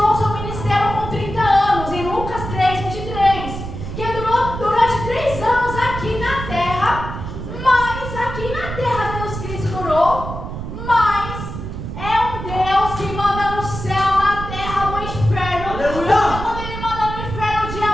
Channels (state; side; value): noise; right; rumble, 7 dB below the sound